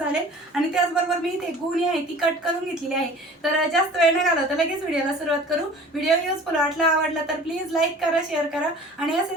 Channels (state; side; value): normal; both; correlation 0.45